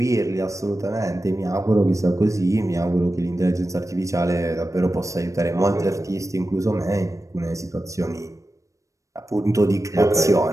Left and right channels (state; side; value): late; left; 0.15 ms